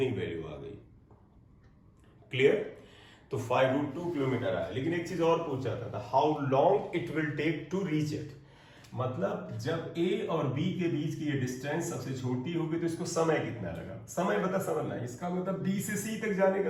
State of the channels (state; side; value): identical; both; correlation 1.00